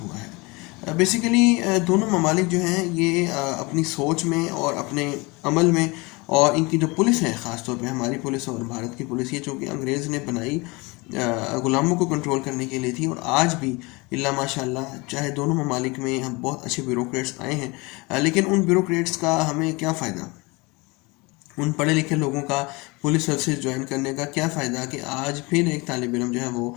ہوا ہے۔ بیسیکلی دونوں ممالک جو ہیں یہ اپنی سوچ میں اور اپنے عمل میں، اور ان کی جو پولیس ہے، خاص طور پہ ہماری پولیس اور بھارت کی پولیس، یہ چونکہ انگریز نے بنائی غلاموں کو کنٹرول کرنے کے لیے تھی، اور آج بھی اللہ ماشاء اللہ چاہے دونوں ممالک میں ہم بہت اچھے بیوروکریٹس آئے ہیں، لیکن ان بیوروکریٹس کا ہمیں کیا فائدہ؟ ان پڑھے لکھے لوگوں کا پولیس سروسز جوائن کرنے کا کیا فائدہ کہ آج پھر ایک طالب علم جو ہے وہ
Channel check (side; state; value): right; quieter; 25.7 dB